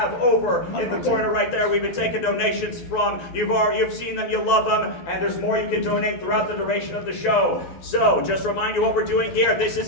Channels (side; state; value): right; late; 12 ms